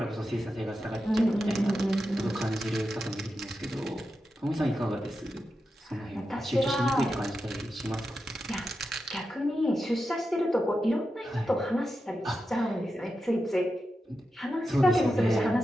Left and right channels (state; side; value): normal; both; correlation 0.89